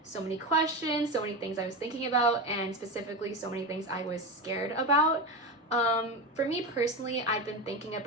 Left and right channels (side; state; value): both; normal; correlation 0.19